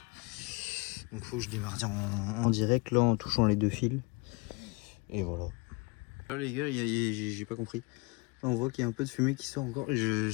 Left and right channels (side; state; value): right; quieter; 28.1 dB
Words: Donc faut que je démarre en direct là en touchant les 2 fils. Et voilà. Là les gars, j'ai pas compris. Là on voit qu'il y a un peu de fumée qui sort encore.